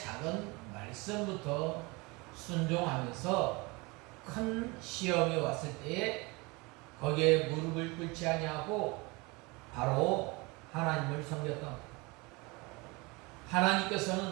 말씀부터 순종하면서 큰 시험이 왔을 때에 거기에 무릎을 꿇지 아니하고 바로 하나님을 섬겼던 것.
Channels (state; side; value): quieter; left; 25.8 dB